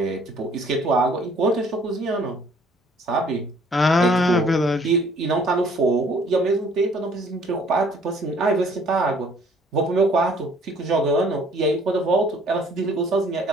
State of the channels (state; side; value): normal; both; correlation 0.58